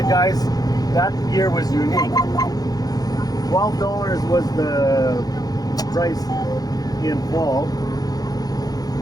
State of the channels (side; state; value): right; late; 0.19 ms